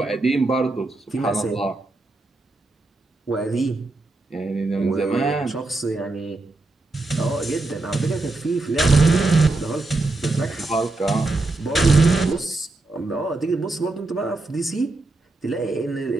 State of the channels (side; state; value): left; quieter; 3.1 dB